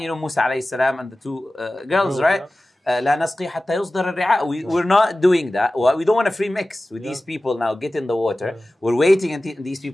you know, Musa alayhi salam and the two girls, right? لا نسقي حتى يصدر الرعاء. We're not doing that. We don't want to free mix with these people now. Get in the water. We're waiting until these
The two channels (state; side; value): normal; both; correlation 0.96